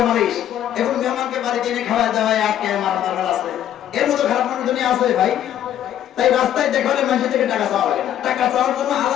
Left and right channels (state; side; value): quieter; right; 11.0 dB